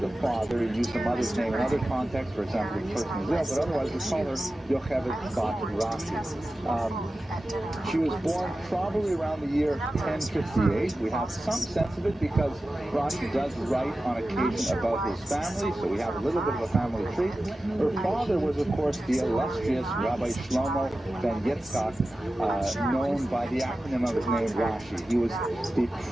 father. You use the mother's name in other contexts, for example, the person is ill, but otherwise we call her Yocheved bat Rashi. She was born probably around the year 1058. We have some sense of it because Rashi does write on occasion about his family, so we have a little bit of a family tree. Her father was, of course, the illustrious Rabbi Shlomo ben Yitzchak, known by the acronym of his name, Rashi. He was the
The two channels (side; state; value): both; normal; correlation 0.94